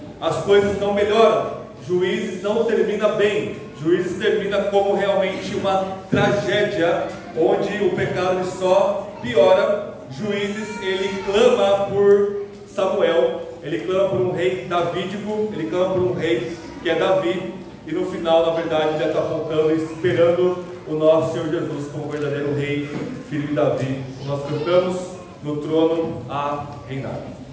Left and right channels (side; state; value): both; identical; correlation 1.00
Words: as coisas não melhoram. Juízes não termina bem. Juízes termina como realmente uma tragédia, onde o pecado só piora. Juízes, ele clama por Samuel, ele clama por um rei davídico, ele clama por um rei que é Davi, e no final, na verdade, já está apontando e esperando o nosso Senhor Jesus como verdadeiro rei, filho de Davi. Nós cantamos no trono a reinar.